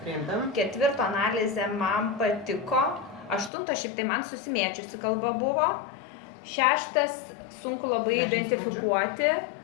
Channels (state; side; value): drops out; right; at 3.5 s